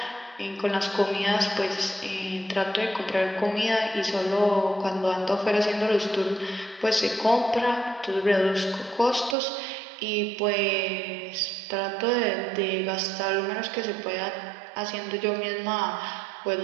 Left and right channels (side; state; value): left; drops out; at 9.3 s